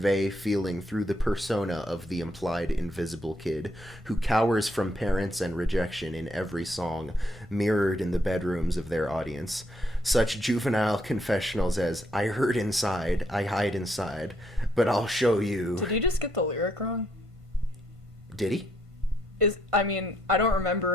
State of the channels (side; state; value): both; normal; correlation 0.73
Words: feeling through the persona of the implied invisible kid, who cowers from parents and rejection in every song, mirrored in the bedrooms of their audience. Such juvenile confessionals as, "I hurt inside, I hide inside, but I'll show you." Did you just get the lyric wrong? Did he? I don't